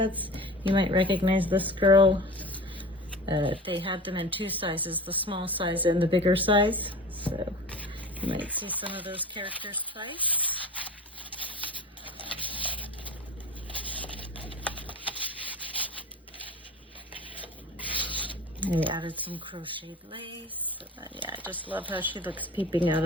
You might recognize this girl. They had them in two sizes, the small size and the bigger size. So you might see some of those characters twice. I added some crocheted lace. Yeah, I just love how she looks peeping out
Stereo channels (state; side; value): normal; both; correlation 0.36